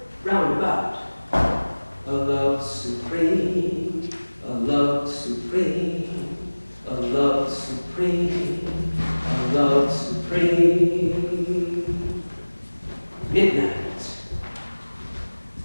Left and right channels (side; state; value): both; inverted; correlation -1.00